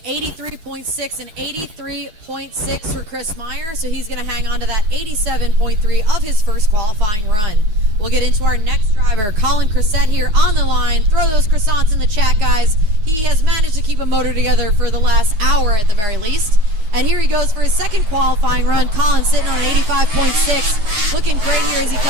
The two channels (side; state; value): left; late; 9.3 ms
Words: 83.6 and 83.6 for Chris Meyer, so he's going to hang on to that 87.3 of his first qualifying run. We'll get into our next driver, Colin Cressette here on the line. Throw those croissants in the chat, guys. He has managed to keep a motor together for the last hour at the very least. And here he goes for his second qualifying run. Colin sitting on 85.6. Looking great here as he